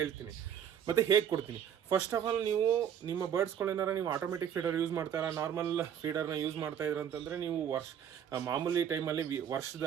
ಮತ್ತು ಹೇಗೆ ಕೊಡ್ತೀನಿ. ಫಸ್ಟ್ ಆಫ್ ಆಲ್, ನೀವು ನಿಮ್ಮ ಬರ್ಡ್ಸ್ಗಳೇನಾರ ನೀವು ಆಟೋಮೆಟಿಕ್ ಫೀಡರ್ ಯೂಸ್ ಮಾಡ್ತಾರಾ, ನಾರ್ಮಲ್ ಫೀಡರ್ನ ಯೂಸ್ ಮಾಡ್ತಾಯಿದ್ರು ಅಂತಂದರೆ ನೀವು ಮಾಮೂಲಿ ಟೈಮಲ್ಲಿ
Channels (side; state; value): left; quieter; 8.9 dB